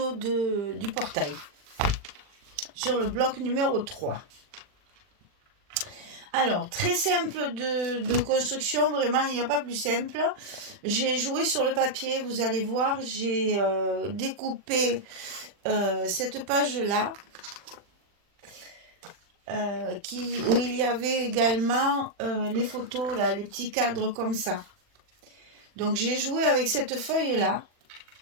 du portail, sur le bloc numéro 3. Alors, très simple de construction, vraiment, il n'y a pas plus simple. J'ai joué sur le papier, vous allez voir, j'ai découpé cette page-là, où il y avait également les photos, là, les petits cadres comme ça. Donc, j'ai joué avec cette feuille-là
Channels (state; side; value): late; left; 40 ms